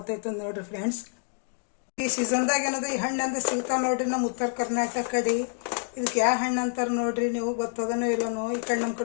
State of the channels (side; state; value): right; silent; 55 dB below the other